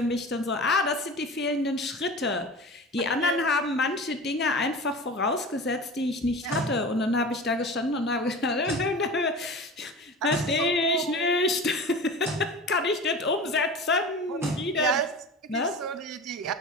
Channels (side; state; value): both; normal; correlation 0.34